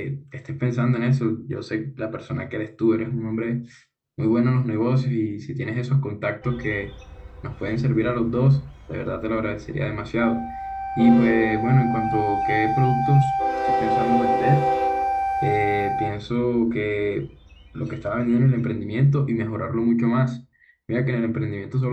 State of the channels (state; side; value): identical; both; correlation 1.00